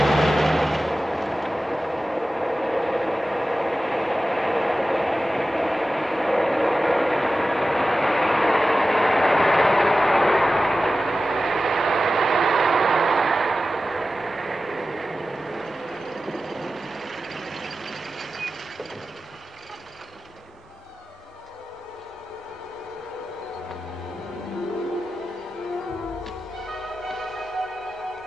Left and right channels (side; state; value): both; normal; correlation 0.94